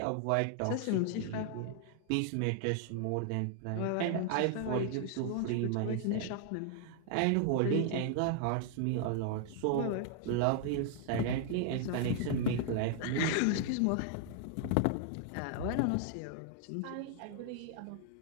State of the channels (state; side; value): different; both; correlation 0.00